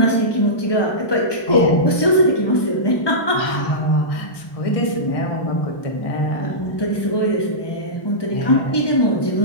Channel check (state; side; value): late; right; 1.2 ms